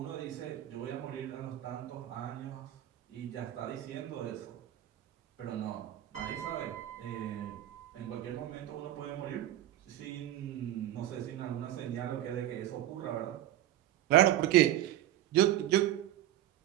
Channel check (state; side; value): quieter; left; 13.0 dB